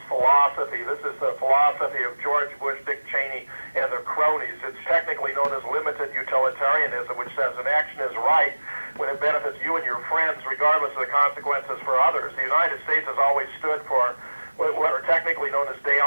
philosophy. This is the philosophy of George Bush, Dick Cheney, and their cronies. It's technically known as limited utilitarianism, which says an action is right when it benefits you and your friends, regardless of the consequences for others. The United States has always stood for what are technically known as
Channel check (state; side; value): inverted; both; correlation -1.00